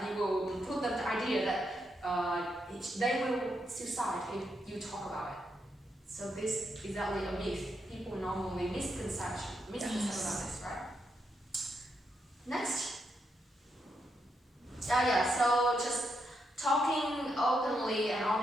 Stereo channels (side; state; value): both; normal; correlation 0.81